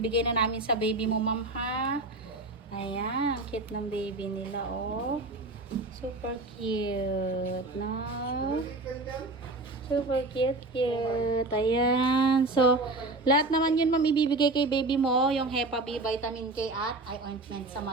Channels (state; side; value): quieter; left; 3.0 dB